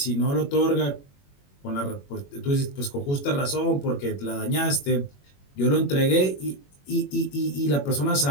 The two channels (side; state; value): right; late; 21 ms